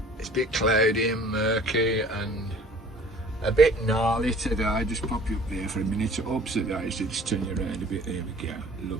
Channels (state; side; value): normal; both; correlation 0.50